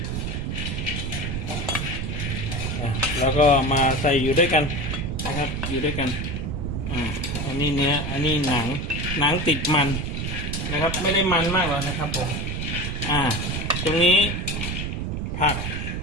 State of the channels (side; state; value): right; noise; rumble, 3 dB below the sound